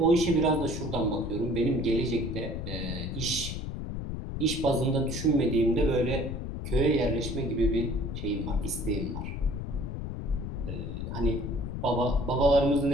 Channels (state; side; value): noise; left; rumble, 5 dB below the sound